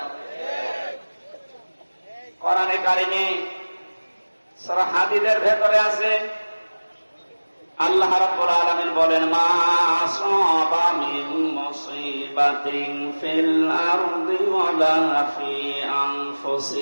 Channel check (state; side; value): inverted; both; correlation -1.00